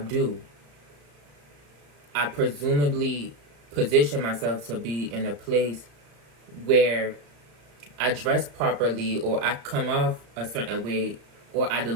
I presumably position myself to be in a place where I dress properly, or I come off a certain way, or I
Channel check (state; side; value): late; left; 35 ms